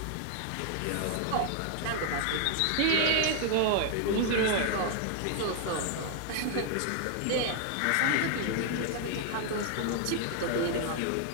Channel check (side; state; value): both; different; correlation 0.00